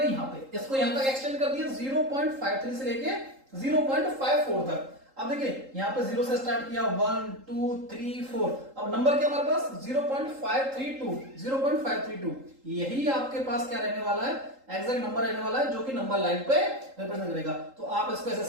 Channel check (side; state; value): left; late; 3.8 ms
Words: यहां पे, इसको यहां तक एक्सटेंड कर दिया 0.53 से लेके 0.54 तक। अब देखिए यहां पे 0 से स्टार्ट किया 1 2 3 4, अब नंबर क्या हमारे पास 0.532 यही आपके पास क्या रहने वाला है, एग्जैक्ट नंबर रहने वाला है, जो कि नंबर लाइन पे रिप्रेजेंट करेगा। तो आप इसको ऐसे